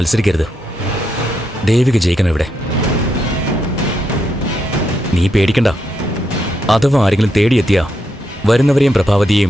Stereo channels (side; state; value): both; normal; correlation 0.81